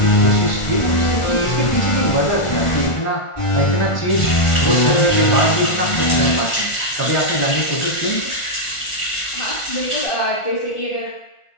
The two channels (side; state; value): right; late; 1.4 ms